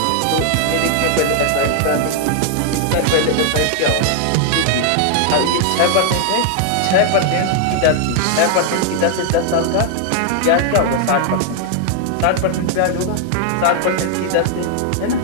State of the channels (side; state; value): both; different; correlation 0.00